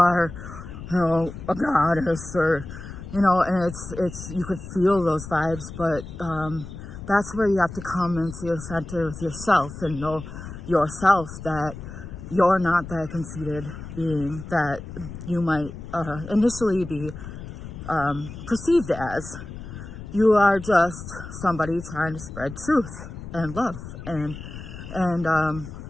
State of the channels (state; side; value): noise; left; rumble, 11 dB below the sound